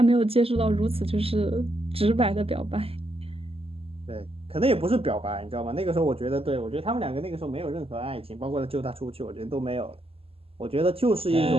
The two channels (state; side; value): late; left; 0.28 ms